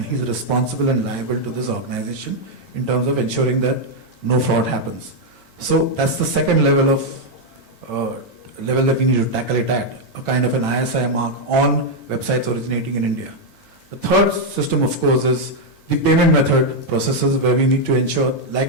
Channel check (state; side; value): late; right; 8.9 ms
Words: he's responsible and liable to this organization in terms of ensuring that no fraud happens. So that's the second level of level that we need to tackle it at, a kind of an ISI mark on websites originating in India. The third system, of course, is the payment method processes where we need to ensure,